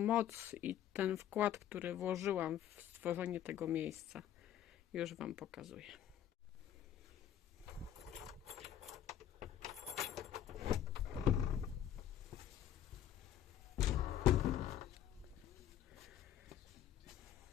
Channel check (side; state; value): right; quieter; 10.8 dB